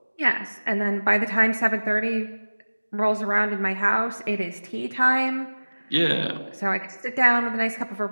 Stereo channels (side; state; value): both; inverted; correlation -1.00